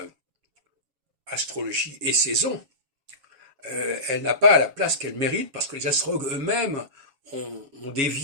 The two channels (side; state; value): left; late; 7.2 ms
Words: astrologie et saison, elle n'a pas la place qu'elle mérite, parce que les astrologues eux-mêmes ont